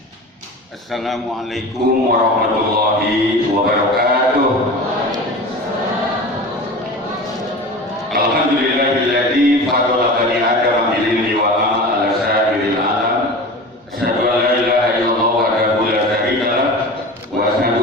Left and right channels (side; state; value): both; normal; correlation 0.33